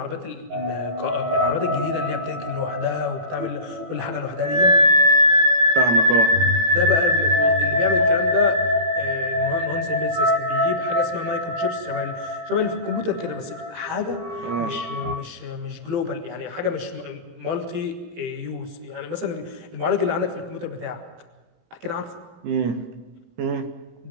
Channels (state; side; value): late; left; 18 ms